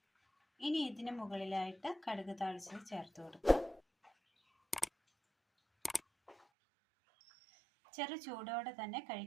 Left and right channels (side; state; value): left; drops out; at 6.4 s